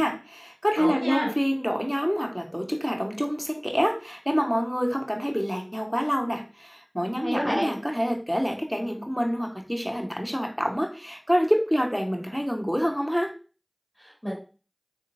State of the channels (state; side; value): identical; both; correlation 1.00